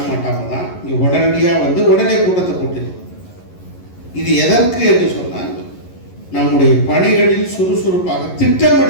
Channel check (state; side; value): late; right; 11 ms